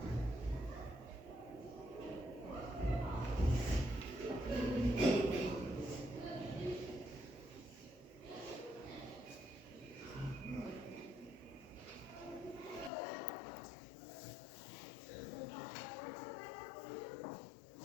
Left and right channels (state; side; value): drops out; right; at 12.9 s